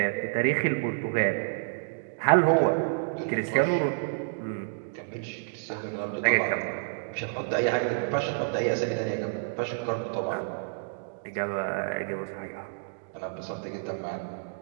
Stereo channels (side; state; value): left; silent; digital silence